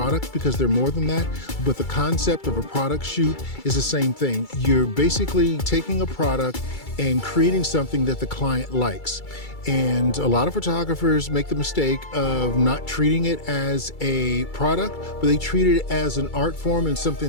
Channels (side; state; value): right; late; 2.3 ms